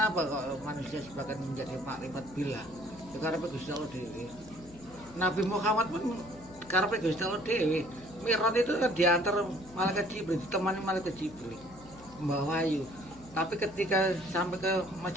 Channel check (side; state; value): left; noise; hum, 20 dB below the sound